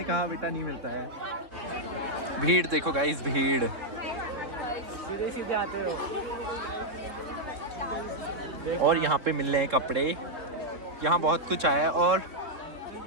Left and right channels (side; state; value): left; late; 3.7 ms